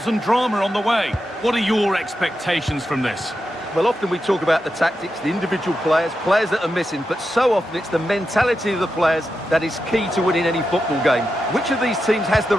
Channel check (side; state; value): both; normal; correlation 0.88